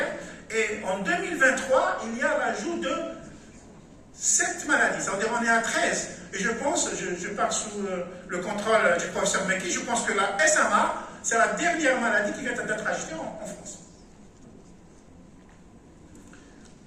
Et en 2023, il y a l'ajout de 7 maladies, c'est-à-dire on est à 13. Et je pense, je pars sous le contrôle du professeur Meki, je pense que la SMA, c'est la dernière maladie qui vient d'être ajoutée en France.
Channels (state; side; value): identical; both; correlation 1.00